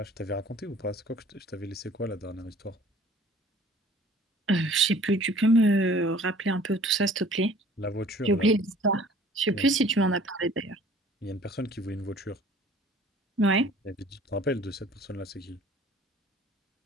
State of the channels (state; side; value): normal; both; correlation 0.51